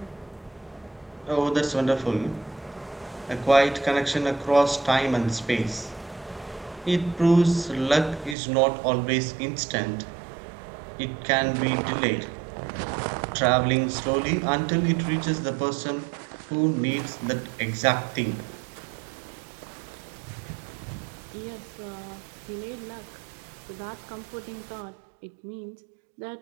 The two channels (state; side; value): drops out; left; at 8.3 s